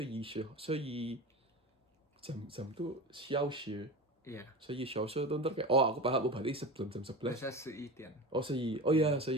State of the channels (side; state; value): both; normal; correlation 0.28